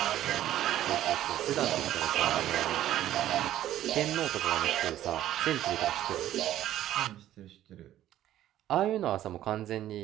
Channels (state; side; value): quieter; left; 12.8 dB